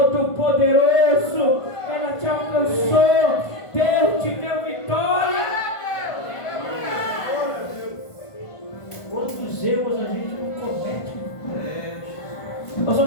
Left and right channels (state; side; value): late; right; 1.5 ms